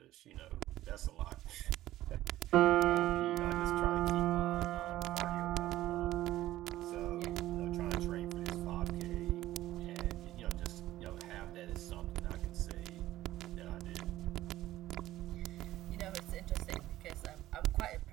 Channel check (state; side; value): quieter; left; 14.9 dB